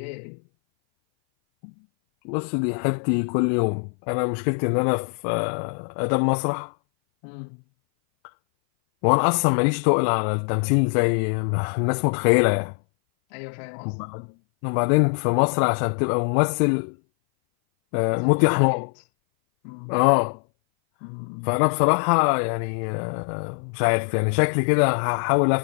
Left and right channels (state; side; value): silent; right; 58 dB below the other